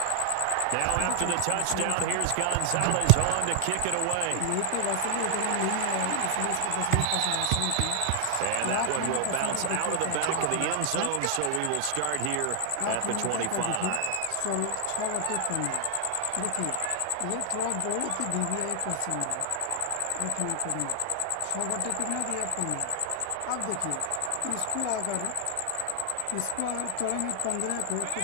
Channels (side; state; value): both; different; correlation 0.00